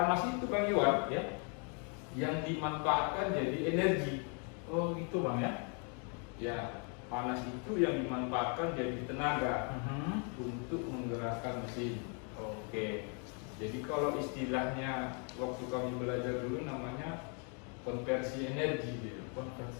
itu Bang Iwan Ya. yang dimanfaatkan jadi energi. Oh, gitu Bang ya. Ya, panas itu yang dimanfaatkan jadi tenaga untuk menggerakkan mesin. Oke. Jadi kalau istilahnya waktu kami belajar dulu namanya konversi energi gitu.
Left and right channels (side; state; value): right; quieter; 38.9 dB